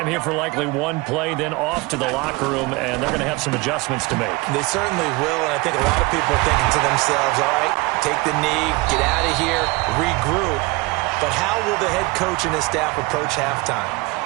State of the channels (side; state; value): left; quieter; 24.4 dB